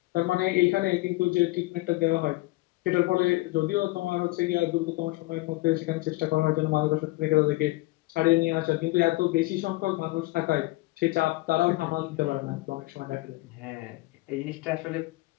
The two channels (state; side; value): quieter; right; 20.8 dB